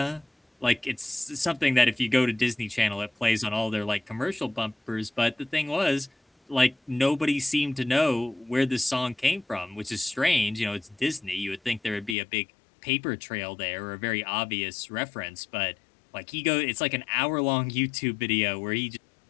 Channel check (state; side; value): drops out; right; at 12.2 s